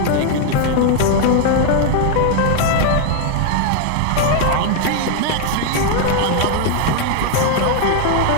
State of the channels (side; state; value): both; different; correlation 0.00